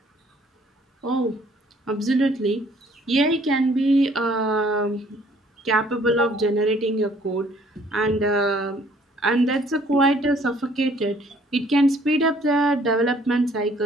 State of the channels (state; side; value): normal; both; correlation 0.60